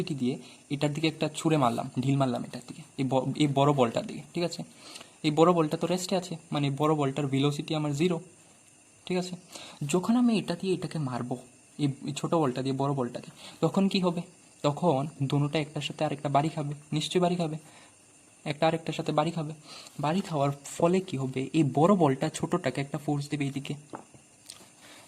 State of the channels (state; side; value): identical; both; correlation 1.00